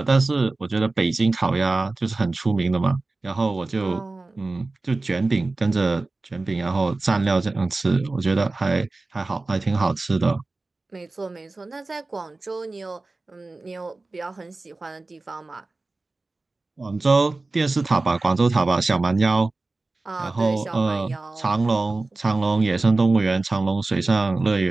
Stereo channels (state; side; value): quieter; left; 3.3 dB